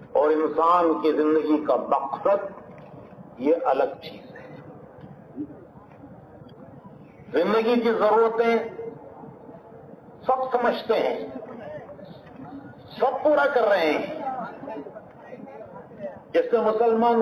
اور انسان کی زندگی کا مقصد یہ الگ چیز ہے۔ زندگی کی ضرورتیں سب سمجھتے ہیں، سب پورا کر رہے ہیں، جس سے مسلمان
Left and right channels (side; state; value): both; identical; correlation 1.00